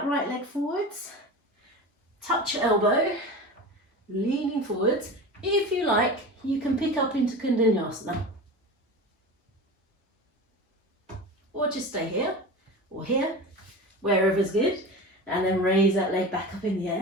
right leg forwards. Touch your elbow, leaning forwards. If you like, you can pick up into Kundalini, or just stay here, or here, wherever's good. And then raise that leg back up in the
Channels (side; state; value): both; normal; correlation 0.30